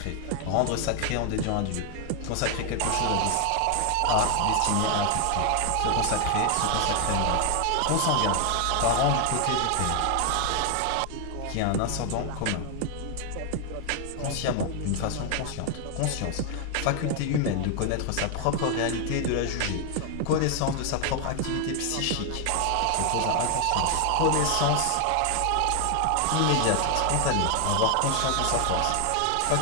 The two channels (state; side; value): different; both; correlation 0.00